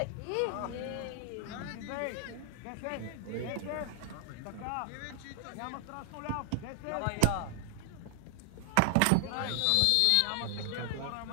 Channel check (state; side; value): different; both; correlation 0.00